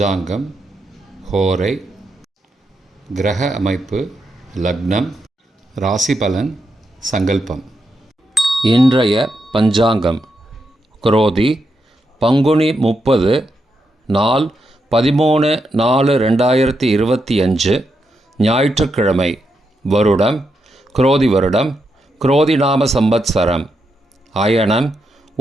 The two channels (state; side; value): normal; both; correlation 0.83